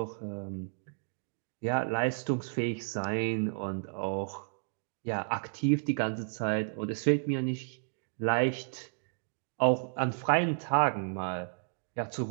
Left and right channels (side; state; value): left; silent; digital silence